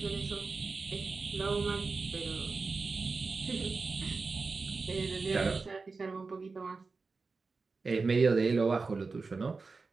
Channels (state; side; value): quieter; left; 4.2 dB